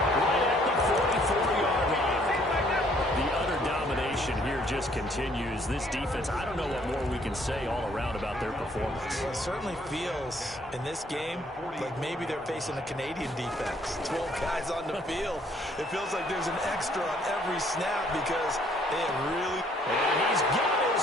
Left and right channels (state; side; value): normal; both; correlation 0.64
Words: right at the 44-yard line. The utter domination here just continues. This defense, I don't know what more we can say all around about their performance. Well, it certainly feels in this game like maybe they're facing a Canadian defense. 12 guys on the field. It feels like there's an extra on every snap because they have really... And he's got